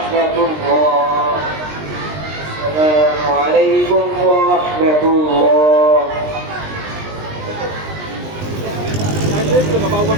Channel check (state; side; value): late; left; 20 ms